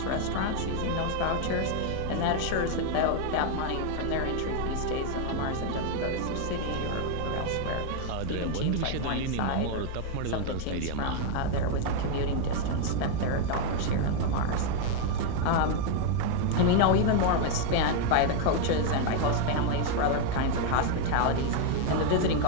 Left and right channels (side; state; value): both; different; correlation 0.01